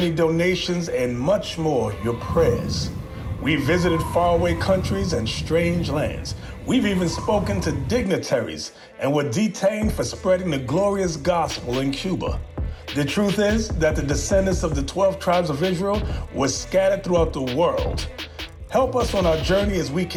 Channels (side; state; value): both; identical; correlation 1.00